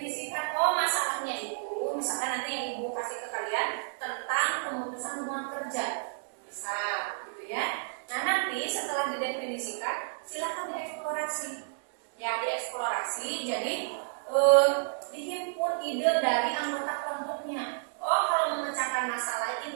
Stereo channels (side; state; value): left; silent; digital silence